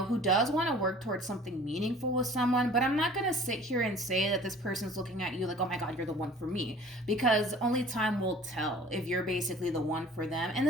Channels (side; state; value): both; normal; correlation 0.48